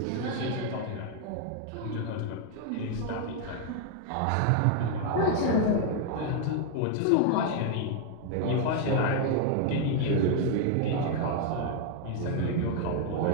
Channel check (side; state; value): both; different; correlation 0.00